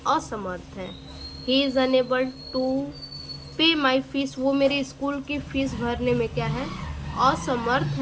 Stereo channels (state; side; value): identical; both; correlation 1.00